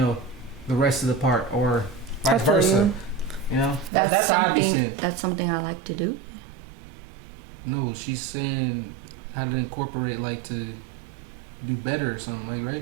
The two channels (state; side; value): drops out; left; at 3.9 s